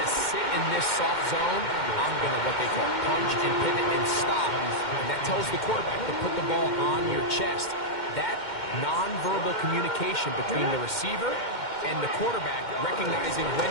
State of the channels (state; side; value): late; right; 2.1 ms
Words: to sit in this soft zone. I'm going to, what they call, punch and pivot and stop. And that tells the quarterback to put the ball on your chest. That nonverbal communication between the receiver and the quarterback, recognizing when